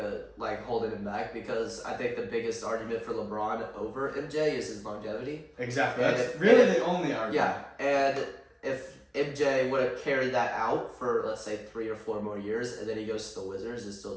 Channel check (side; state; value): both; identical; correlation 1.00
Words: holding him back, because I think the biggest argument for LeBron over MJ is his longevity. Exactly. That's really the only argument. Yeah, and if MJ would have carried that out for, let's say, 3 or 4 more years, and then he goes to the Wizards and still